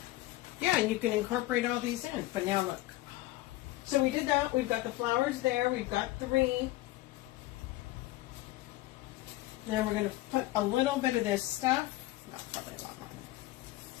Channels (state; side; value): quieter; right; 17.5 dB